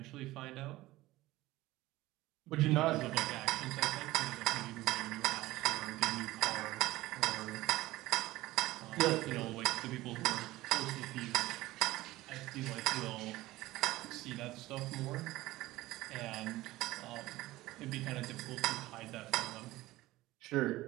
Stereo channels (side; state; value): left; quieter; 17.8 dB